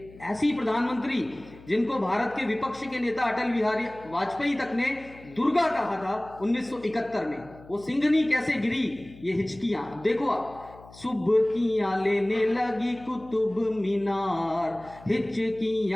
ऐसी प्रधानमंत्री जिनको भारत के विपक्ष के नेता अटल बिहारी वाजपेयी तक ने दुर्गा कहा था 1971 में, वो सिंहनी कैसे गिरी, ये हिचकियां देखो आप। सुबकियां लेने लगी कुतुब मीनार,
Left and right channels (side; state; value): left; noise; hum, 21 dB below the sound